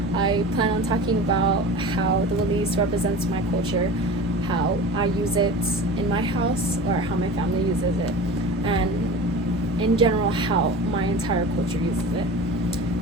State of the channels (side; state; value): both; normal; correlation 0.34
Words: I plan on talking about how the Walis represents my culture, how I use it in my house or how my family uses it, and in general how my entire culture uses it.